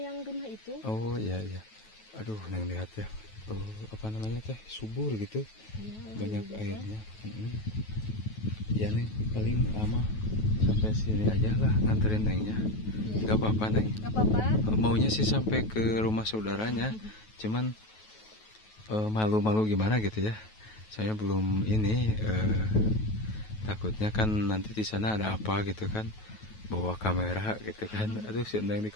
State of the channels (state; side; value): late; right; 9.3 ms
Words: yang rumah itu. Oh iya. Aduh, Neng lihat ya. Apa namanya teh? Subur gitu. Iya, Banyak juga. airnya. Ya Neng, paling lama sampai sini aja lah nganterin Nengnya. Iya. Gak apa-apa Neng. Gak apa-apa. Maunya sih sampai ke rumah saudaranya. Cuman malu-malu gimana gitu ya. Saya belum ini. Takutnya kan nanti di sana ada apa gitu kan, bawa kamera gitu kan. Aduh, si Neng di